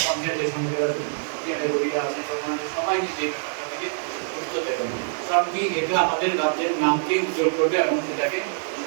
পঞ্চায়েতের সঙ্গে এপিআরে রোগীরা আছেন, সবাই যে ব্যাপারটা থেকে গুরুত্ব দেবেন। কারণ কি এটা আমাদের রাজ্যের নামকে উজ্জ্বল করবে এবং সেটাকে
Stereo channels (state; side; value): silent; left; digital silence